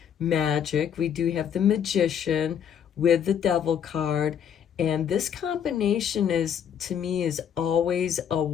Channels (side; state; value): right; quieter; 8.5 dB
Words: magic. We do have the Magician with the Devil card, and this combination is, to me, is always a